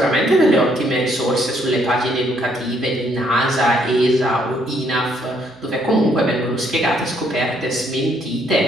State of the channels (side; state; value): right; noise; hum, 29 dB below the sound